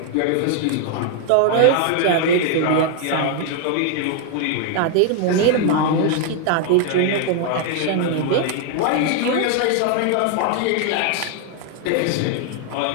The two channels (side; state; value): both; different; correlation 0.00